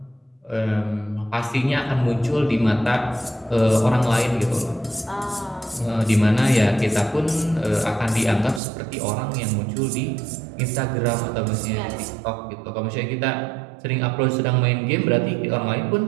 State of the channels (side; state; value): left; drops out; at 8.6 s